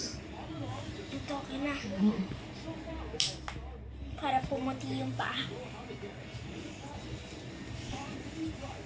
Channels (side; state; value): both; identical; correlation 1.00